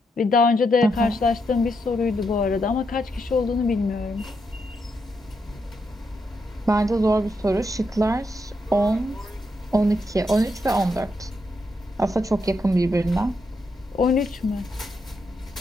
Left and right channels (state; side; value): normal; both; correlation 0.81